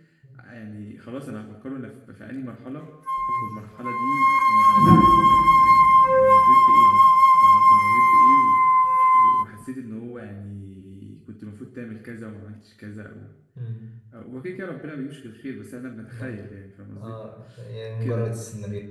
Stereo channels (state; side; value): identical; both; correlation 1.00